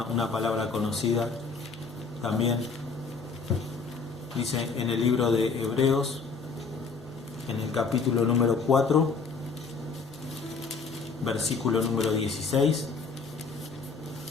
palabra conocida también. Dice en el libro de Hebreos, en el capítulo número 4, versículo número 16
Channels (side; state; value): right; quieter; 4.7 dB